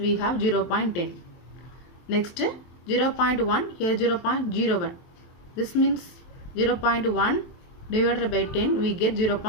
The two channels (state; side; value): late; right; 23 ms